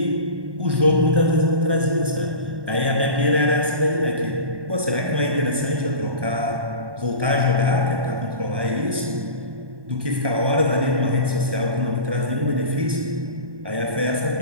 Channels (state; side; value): late; left; 1.2 ms